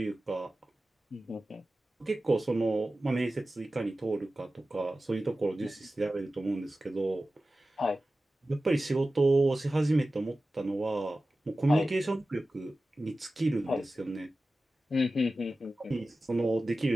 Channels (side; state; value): both; normal; correlation 0.95